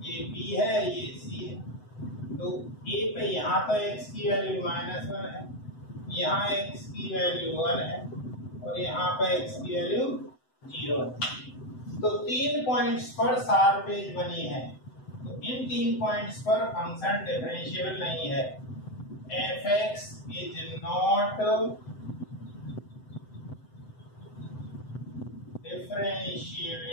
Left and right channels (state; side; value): late; right; 7.8 ms